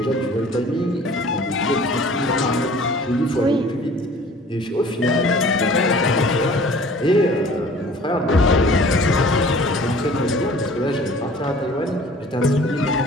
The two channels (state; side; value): normal; both; correlation 0.49